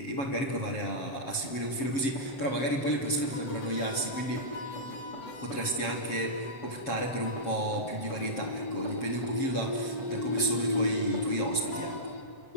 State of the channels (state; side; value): late; right; 7.4 ms